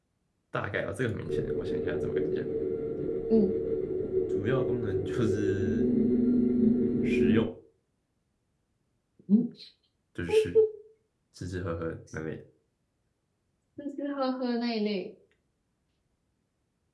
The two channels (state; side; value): identical; both; correlation 1.00